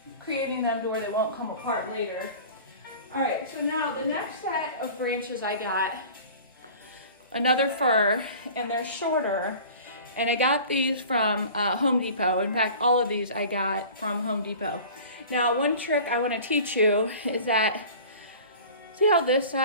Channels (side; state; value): both; inverted; correlation -0.42